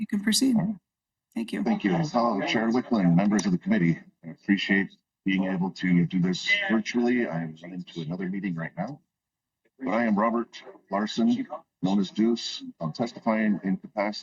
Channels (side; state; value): both; identical; correlation 1.00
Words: can proceed. Thank you. Thank you. Hello, Chair Wiklund, members of the committee. I appreciate being able to do this virtually. I am running to another meeting right now. But I am Robert Larson, known as Deuce. I'm testifying in